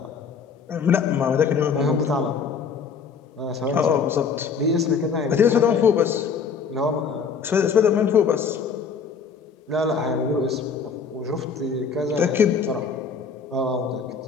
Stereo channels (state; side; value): quieter; right; 5.8 dB